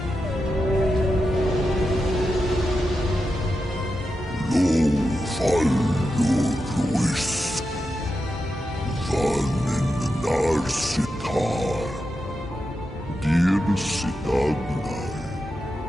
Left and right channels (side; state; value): both; normal; correlation 0.88